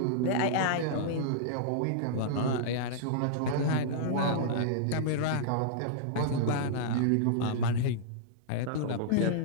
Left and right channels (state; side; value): different; both; correlation -0.02